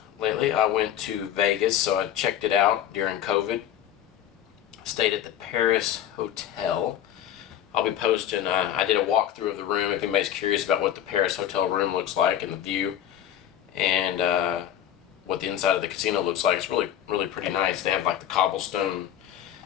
lately. I went to Vegas, so I checked it out during COVID. Stayed at the Paris Hotel. I'll be posting, I did a walkthrough of the room if anybody's curious about what the Paris Hotel room looks like and the view. And what the inside of the casino looks like. It's really pretty nice. They have like the cobblestone,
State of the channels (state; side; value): quieter; right; 10.9 dB